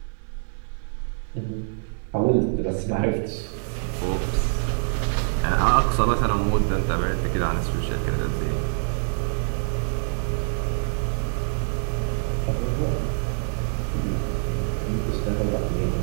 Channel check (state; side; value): silent; left; 61 dB below the other